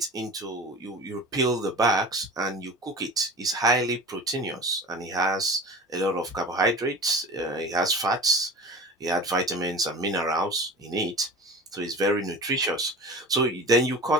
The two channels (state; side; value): normal; both; correlation 0.36